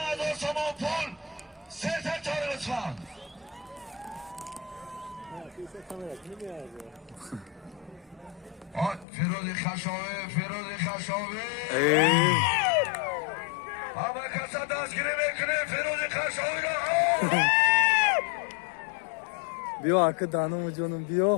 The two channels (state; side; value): drops out; right; at 9.1 s